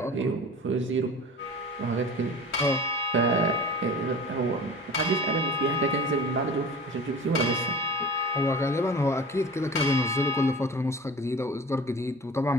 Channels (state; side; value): normal; both; correlation 0.38